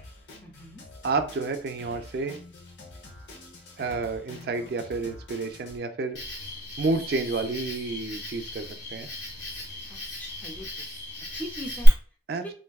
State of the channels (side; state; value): both; normal; correlation 0.66